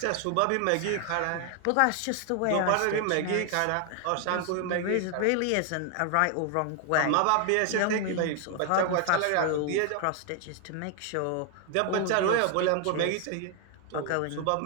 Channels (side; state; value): both; different; correlation 0.00